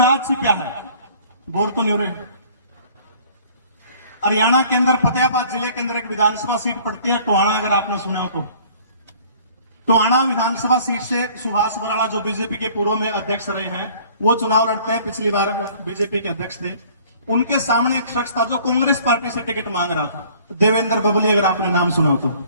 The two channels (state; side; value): inverted; both; correlation -0.53